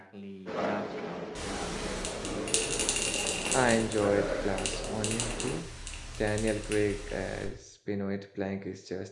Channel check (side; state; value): both; identical; correlation 1.00